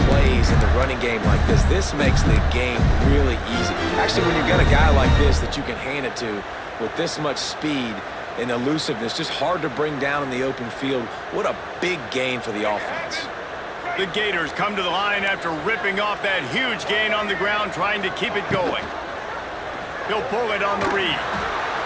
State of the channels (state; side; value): identical; both; correlation 1.00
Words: plays in the running game like this makes the game really easy. Actually, when you've got a guy like this that you can hand it to with this much speed and elusiveness, just hard to bring down in the open field, what a big gain for the offense. The Gators come to the line after ripping off that huge gain on the ground, trying to keep it going. He'll pull it on the read.